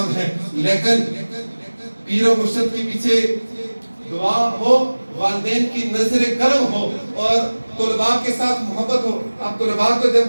ہے، لیکن پیر و مرشد کے پیچھے دعا ہو، والدین کی نظر کرم ہو اور طلباء کے ساتھ محبت ہو۔ اب طلباء کو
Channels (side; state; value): both; inverted; correlation -1.00